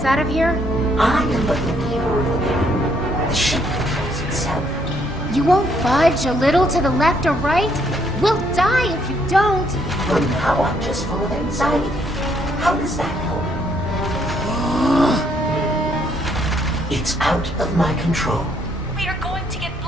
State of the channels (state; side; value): normal; both; correlation 0.70